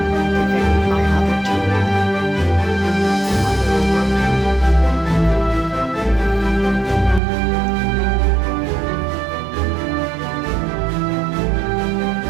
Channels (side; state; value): left; drops out; at 7.2 s